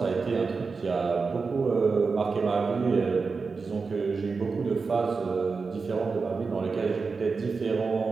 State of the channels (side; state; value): left; quieter; 4.6 dB